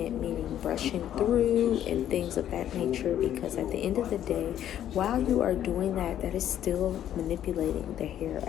meaning brushing through and things of that nature. Because at the end of the day, while you are doing that, that is still manipulating the hair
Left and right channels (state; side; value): quieter; right; 11.0 dB